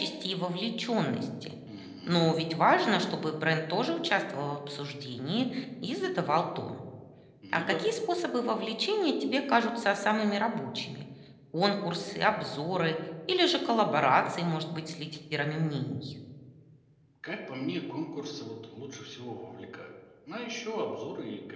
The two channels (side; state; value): both; identical; correlation 1.00